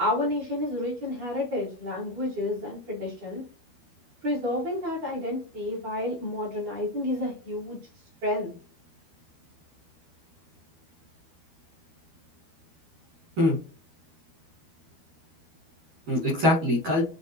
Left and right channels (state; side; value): late; left; 12 ms